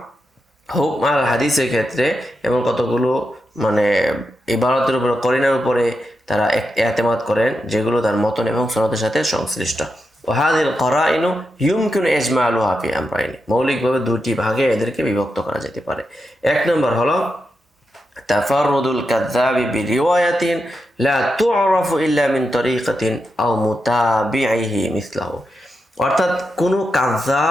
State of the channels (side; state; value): both; normal; correlation 0.86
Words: হুকম আল হাদিসের ক্ষেত্রে এমন কতগুলো ইবারতের উপরে, করিনার উপরে তারা এতেমাদ করেন যেগুলো তার মতন এবং সনদের সাথে সংশ্লিষ্ট। ওয়াহাদিল করাইনু ইউমকিনু ইজমালুহা ফি আমরাইনি, মৌলিকভাবে দুটি ভাগে এদেরকে বিভক্ত করা যেতে পারে। এক নম্বর হলো তাফাররুদুল কাযযাবি বিরিওয়ায়াতিন লা তু'রাফু ইল্লা মিন তরিকাতিন আও মুতাবিইহি মিসলাহু, অর্থাৎ কোনো